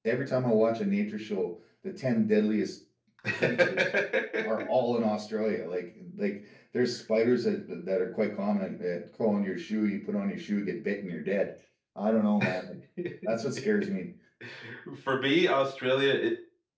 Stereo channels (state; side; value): identical; both; correlation 1.00